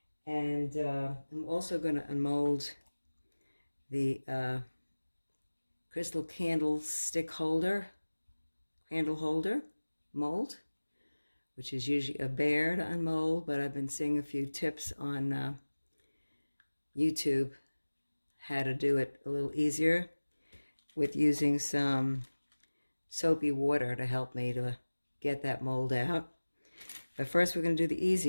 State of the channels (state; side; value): inverted; both; correlation -1.00